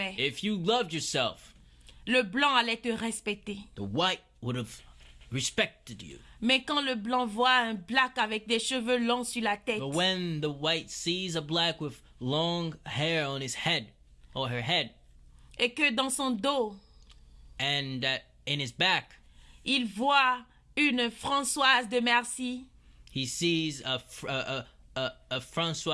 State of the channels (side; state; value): both; identical; correlation 1.00